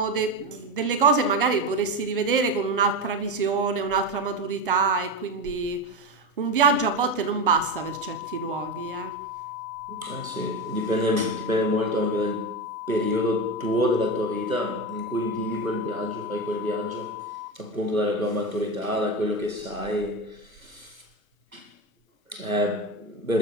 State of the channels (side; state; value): both; normal; correlation 0.18